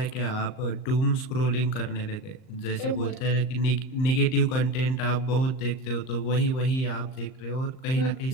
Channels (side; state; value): right; late; 38 ms